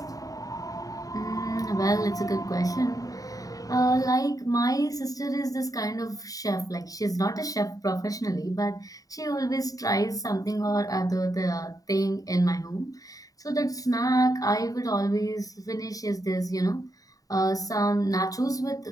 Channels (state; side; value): late; right; 0.17 ms